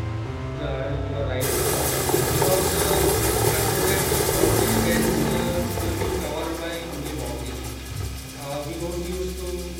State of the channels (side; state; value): both; identical; correlation 1.00